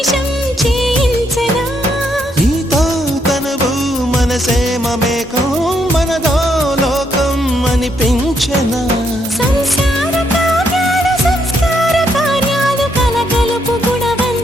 చేయించనా నీతో తనువు మనసే మమేకం మనదో లోకం అనిపించనా సంసార కావ్యాలు సంస్కార కార్యాలు కలగలుపు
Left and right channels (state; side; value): normal; both; correlation 0.75